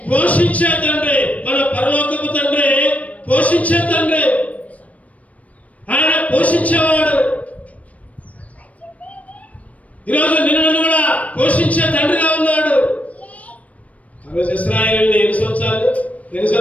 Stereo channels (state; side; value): late; right; 0.068 ms